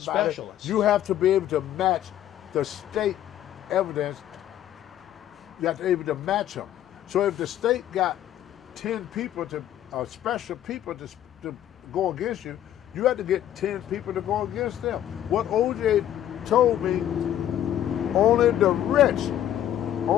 Specialist. You have to be able to match the state evidence. You have to be able to match them. So if the state got 10 people special people to go against you, you have to get 10 people to go against them. What OJ told me, only the rich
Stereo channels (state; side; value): quieter; right; 11.6 dB